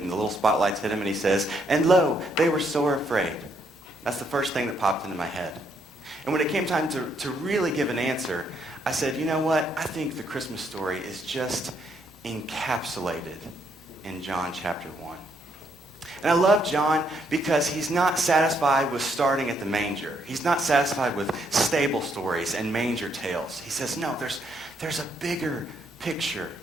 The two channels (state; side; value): normal; both; correlation 0.73